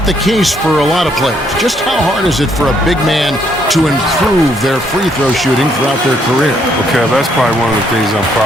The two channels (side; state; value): both; normal; correlation 0.70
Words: the case for a lot of players. Just how hard is it for a big man to improve their free throw shooting throughout their career? Okay, that's probably one of the things I'm